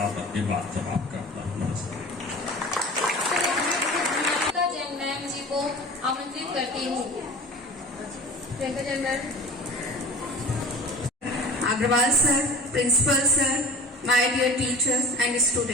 अपनी बात समाप्त करता हूँ। नमस्कार। जैन मैम जी को आमंत्रित करती हूँ। Priyanka Jain ma'am. Agrawal sir, principal sir, my dear teachers and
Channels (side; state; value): both; normal; correlation 0.38